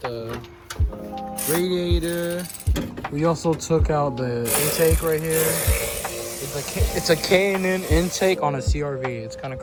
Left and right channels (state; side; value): identical; both; correlation 1.00